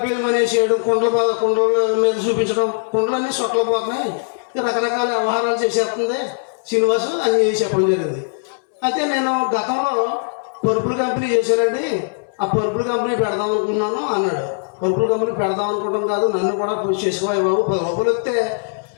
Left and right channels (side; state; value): right; silent; 66 dB below the other